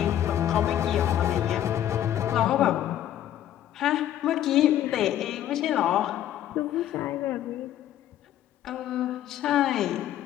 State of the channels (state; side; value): quieter; right; 11.7 dB